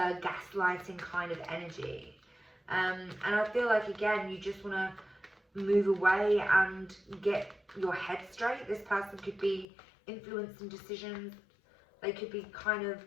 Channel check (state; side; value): drops out; right; at 9.7 s